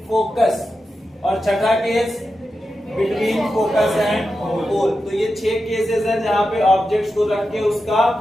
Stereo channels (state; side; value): normal; both; correlation 0.90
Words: फोकस। और छठा case between focus and pole. तो ये 6 केसेस हैं जहां पे ऑब्जेक्ट्स को रख के उसका